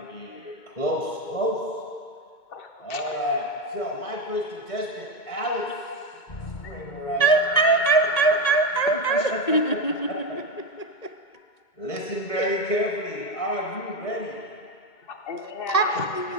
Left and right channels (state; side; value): late; right; 2.2 ms